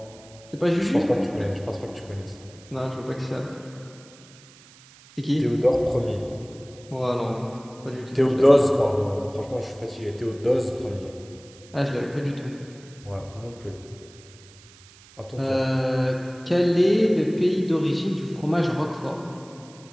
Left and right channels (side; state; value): right; noise; hiss, 24 dB below the sound